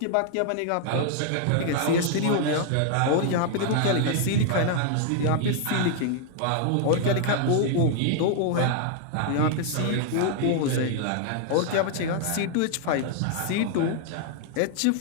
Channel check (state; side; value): different; both; correlation 0.00